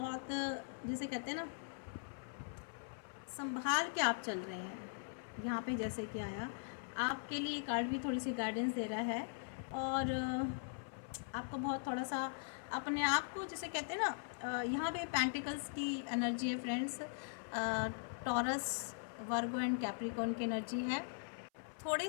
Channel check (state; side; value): silent; right; 51 dB below the other